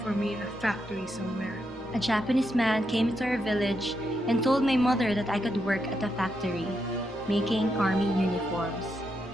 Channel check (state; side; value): normal; both; correlation 0.82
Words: me in a factory somewhere. A Japanese man came to our village and told my mother that I could work at a factory, making army uniforms.